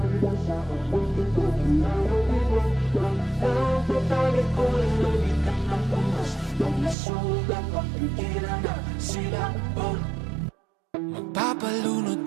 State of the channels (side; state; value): left; drops out; at 7.0 s